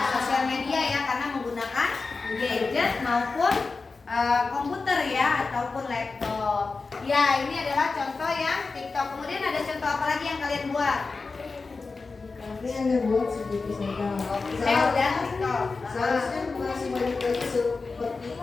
Sosial media ya, karena menggunakan gadget maupun komputer ya ataupun laptop. Ya, ini adalah contoh yang TikTok. Kemudian ada contoh apa lagi yang kalian buat? Tapi hanya buat sedikit saja. Saya udah TikTok. Seharusnya masih banyak lagi seperti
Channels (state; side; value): quieter; right; 4.1 dB